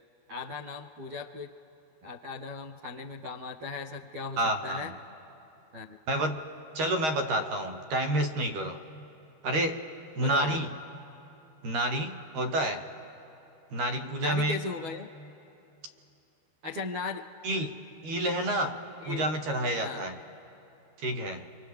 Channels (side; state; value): left; late; 13 ms